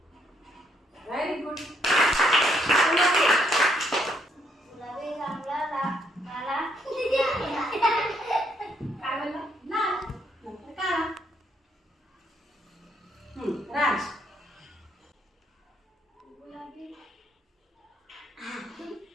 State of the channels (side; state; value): both; normal; correlation 0.71